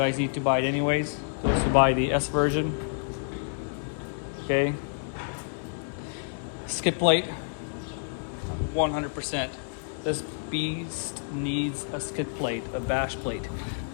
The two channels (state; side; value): silent; right; digital silence